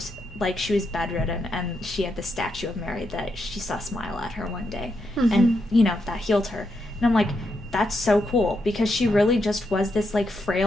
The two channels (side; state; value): both; normal; correlation 0.82